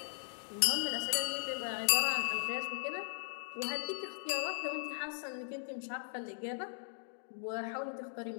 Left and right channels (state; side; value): silent; right; digital silence